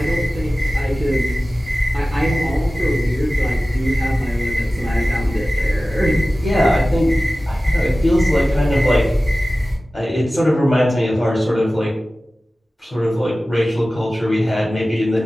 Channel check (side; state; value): both; normal; correlation 0.96